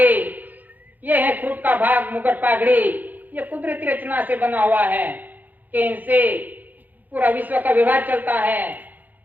ये है खुद का भाग मुकुट पागड़ी, ये कुदरती रचना से बना हुआ है कि इनसे पूरा विश्व का व्यवहार चलता है।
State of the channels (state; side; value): late; left; 0.083 ms